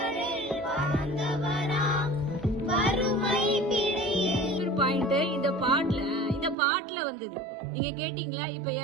இந்த பாட்டுல வந்தது. நீங்க கேட்டீங்களா? இப்ப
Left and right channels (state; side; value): drops out; left; at 6.6 s